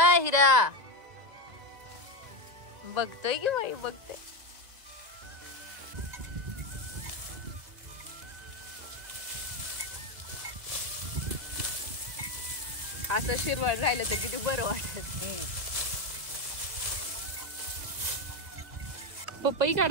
बघतोय की बाई बघतोय. असं शिरवळ राहिलं तर किती बरं वाटत. पपई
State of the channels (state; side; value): late; left; 2.0 ms